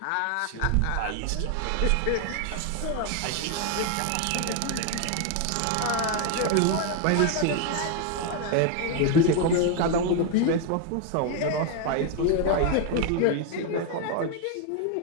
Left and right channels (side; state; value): both; different; correlation 0.01